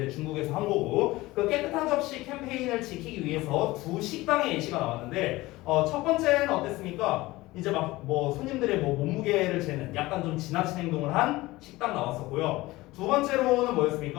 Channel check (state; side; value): quieter; right; 19.3 dB